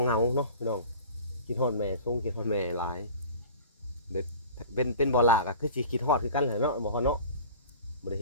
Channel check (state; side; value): inverted; both; correlation -0.41